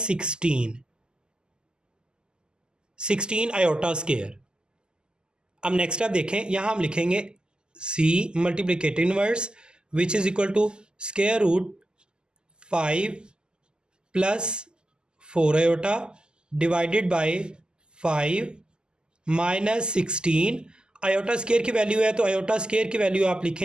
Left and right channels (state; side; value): late; left; 0.047 ms